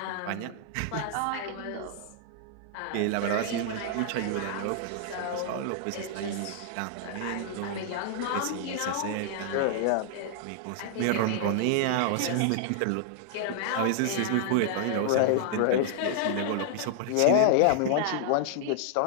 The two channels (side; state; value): both; different; correlation -0.01